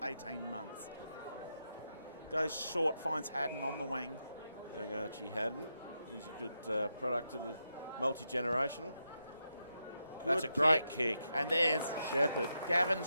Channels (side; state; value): both; inverted; correlation -0.85